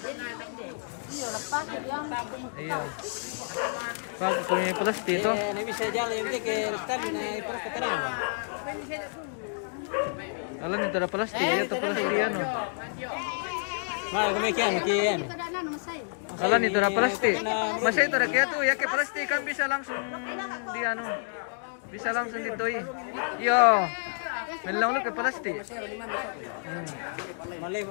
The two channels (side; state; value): right; silent; digital silence